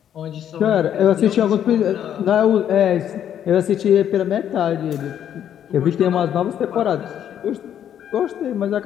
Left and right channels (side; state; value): right; quieter; 9.8 dB